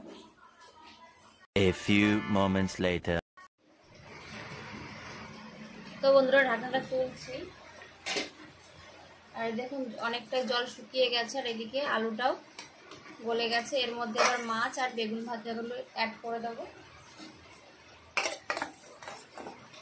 A few moments later. তো বন্ধুরা ঢাকনাটা তুলছি, আর দেখুন অনেকটা জল শুকিয়ে গেছে, আর এদিকে আলুটাও গলে গেছে। এর মধ্যে আবার মাছ আর বেগুন ভাজাগুলো অ্যাড করে দেবো।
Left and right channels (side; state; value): both; identical; correlation 1.00